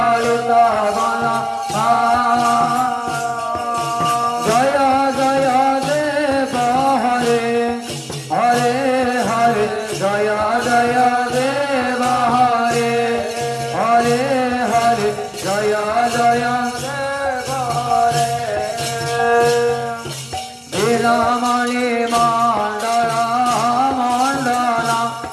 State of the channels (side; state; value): both; identical; correlation 1.00